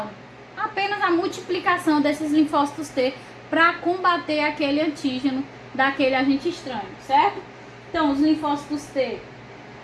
Apenas a multiplicação desses linfócitos T para combater aquele antígeno daquele agente estranho, certo? Então, os linfócitos T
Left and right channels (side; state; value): both; identical; correlation 1.00